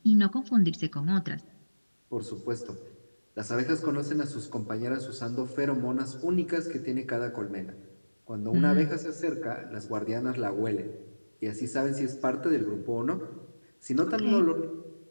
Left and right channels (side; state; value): both; inverted; correlation -1.00